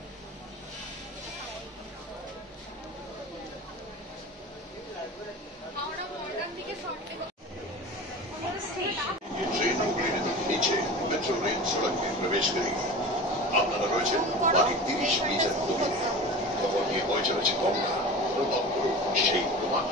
नीचे मेट्रो रेल सड़क में प्रवेश करेगी। আপনারা রয়েছেন বাকি 30 মিটার দূরে। খবর নিয়ে বয়ে চলেছে গঙ্গা, অনুভব করুন সেই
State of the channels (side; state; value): both; normal; correlation 0.33